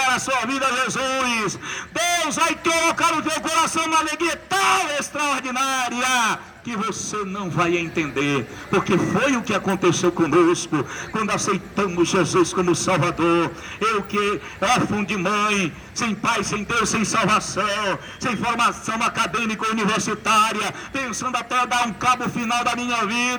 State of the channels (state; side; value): identical; both; correlation 1.00